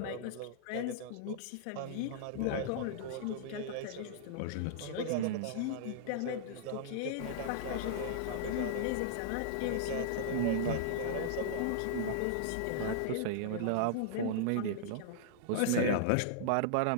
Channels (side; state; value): both; different; correlation -0.01